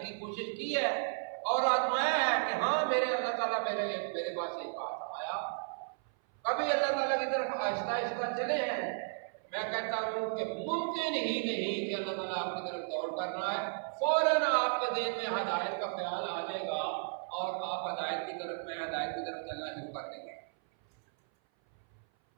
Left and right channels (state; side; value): silent; left; 55 dB below the other